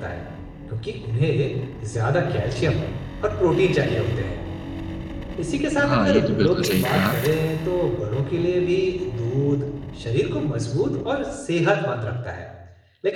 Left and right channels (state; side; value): identical; both; correlation 1.00